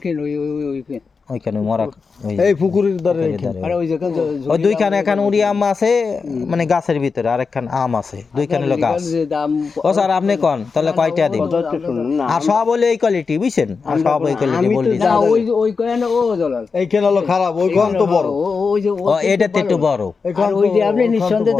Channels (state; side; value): quieter; right; 4.9 dB